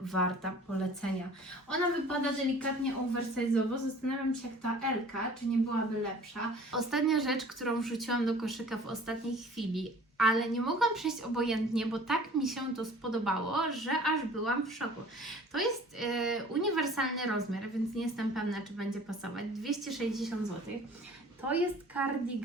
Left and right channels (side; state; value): both; normal; correlation 0.48